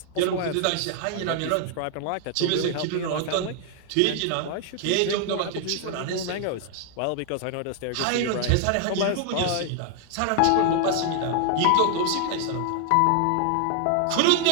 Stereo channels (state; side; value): different; both; correlation 0.00